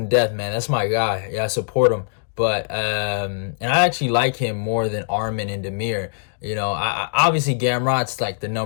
to death, man. That's my guy. Yeah, I support him. But and I actually like him more than Arman and Damir. I obviously Gamrot's like the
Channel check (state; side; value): silent; right; digital silence